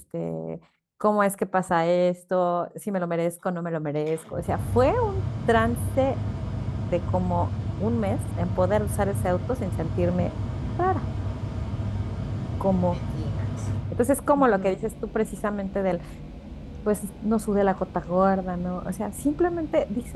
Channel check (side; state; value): both; identical; correlation 1.00